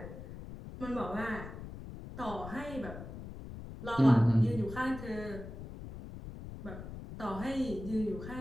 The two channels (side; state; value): left; noise; rumble, 11 dB below the sound